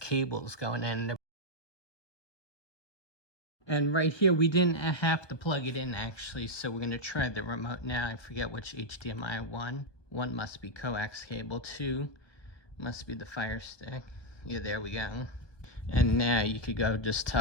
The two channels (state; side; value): late; right; 1.2 ms